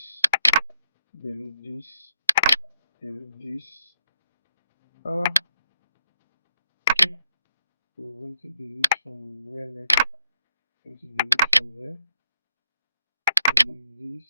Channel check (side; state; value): both; inverted; correlation -0.75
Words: delete this, delete this. Okay. So we're going to delete from where next? Going to delete from there. Delete this,